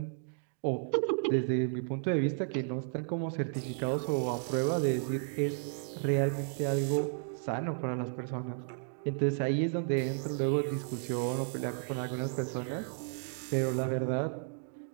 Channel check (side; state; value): left; silent; digital silence